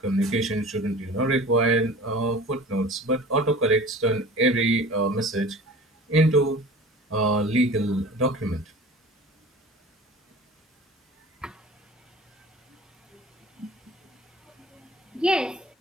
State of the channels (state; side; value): normal; both; correlation 0.41